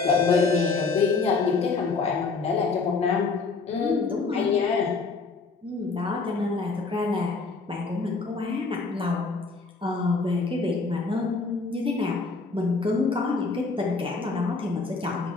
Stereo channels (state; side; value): quieter; right; 4.3 dB